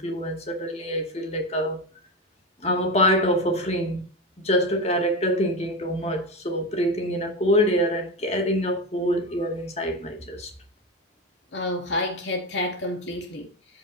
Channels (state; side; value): normal; both; correlation 0.18